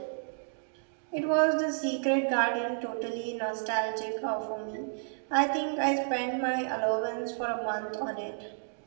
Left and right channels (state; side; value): silent; left; digital silence